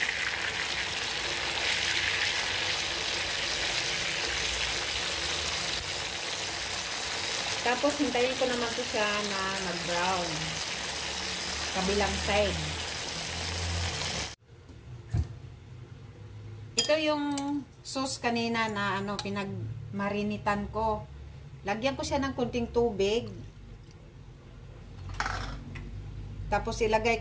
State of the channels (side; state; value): both; identical; correlation 1.00